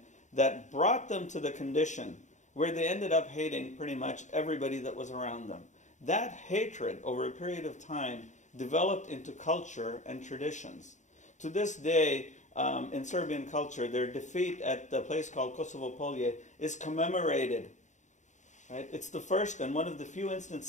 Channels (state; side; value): late; right; 0.35 ms